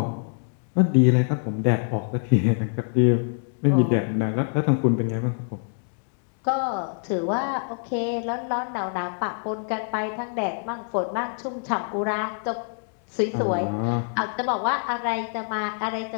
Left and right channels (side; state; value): right; silent; 61 dB below the other